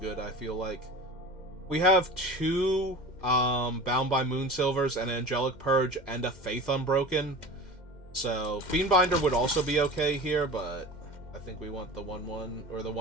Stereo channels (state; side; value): late; right; 2.1 ms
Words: I feel like. We have 2 Bound by Moonsilvers, an Angelic Purge, and a Faith Unbroken. So, Fiendbinder would also be okay here, but I think we want the 1/1, or the